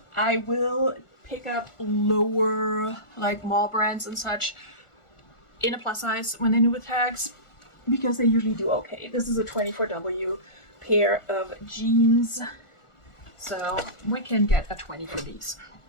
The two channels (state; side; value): late; right; 1.4 ms